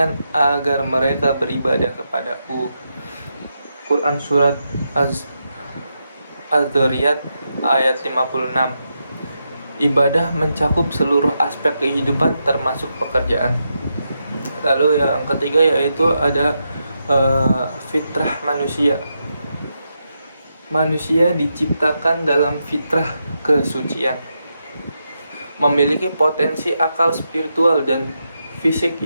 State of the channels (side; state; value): both; inverted; correlation -0.84